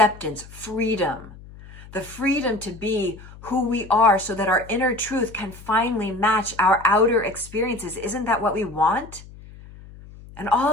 freedom. The freedom to be who we are so that our inner truth can finally match our outer experiences. Isn't that what we want? And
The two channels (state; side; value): noise; left; hum, 18 dB below the sound